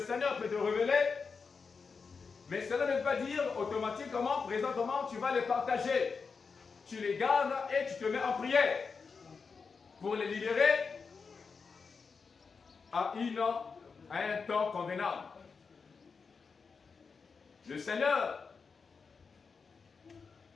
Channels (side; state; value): right; quieter; 5.1 dB